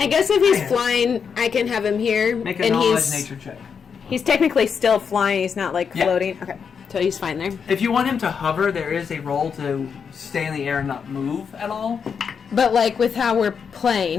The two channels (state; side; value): quieter; right; 6.5 dB